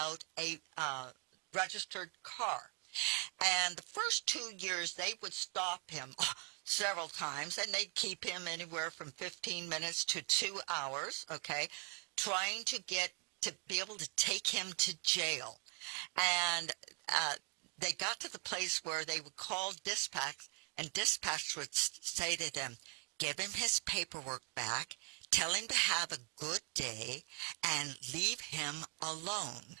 a registered car. And the first 2 years, they would stop him several times, and they'd keep him anywhere from 15 minutes to 2 hours, okay, trying to be able to take him to jail. And they got to the place where they would call dispatch, and dispatch would say to them, give him his paperwork back, tell him to have a good day, and leave him alone.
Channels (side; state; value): left; quieter; 37.0 dB